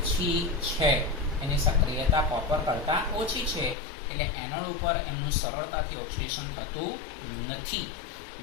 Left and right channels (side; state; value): right; drops out; at 3.8 s